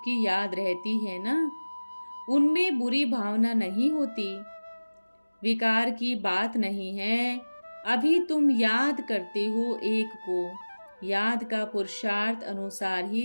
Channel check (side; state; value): both; inverted; correlation -1.00